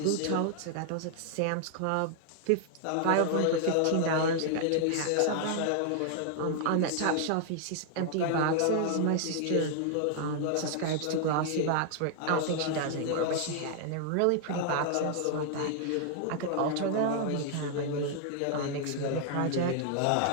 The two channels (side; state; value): both; different; correlation 0.00